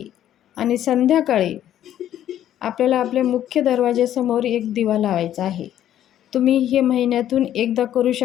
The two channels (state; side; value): quieter; right; 11.4 dB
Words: आणि संध्याकाळी आपल्याला आपल्या मुख्य दरवाजासमोर एक दिवा लावायचा आहे. तुम्ही हे महिन्यातून एकदा करू